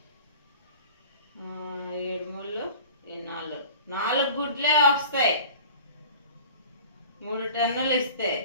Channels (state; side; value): inverted; both; correlation -0.43